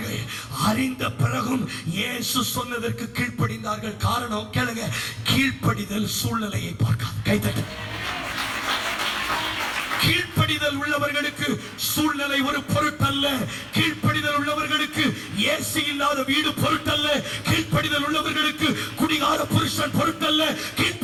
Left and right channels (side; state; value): both; identical; correlation 1.00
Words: அறிந்த பிறகும் இயேசு சொன்னதற்கு கீழ்ப்படிந்தார்கள். காரணம் கேளுங்க, கீழ்ப்படிதல் சூழ்நிலையை பார்க்காது. கைதட்டு. கீழ்ப்படிதல் உள்ளவர்களுக்கு சூழ்நிலை ஒரு பொருட்டல்ல. கீழ்ப்படிதல் உள்ளவர்களுக்கு ஏசி இல்லாத வீடு பொருட்டல்ல. கீழ்ப்படிதல் உள்ளவர்களுக்கு குடிகார புருஷன் பொருட்டல்ல.